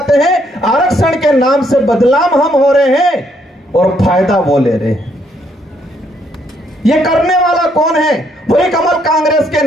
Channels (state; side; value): normal; both; correlation 0.71